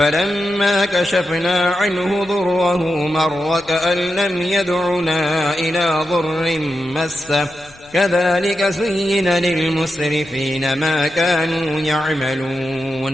كشفنا عنه ضره مر كأن لم يدعنا إلى ضر مسه كذلك زين للمسرفين ما كانوا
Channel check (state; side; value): noise; left; rumble, 27 dB below the sound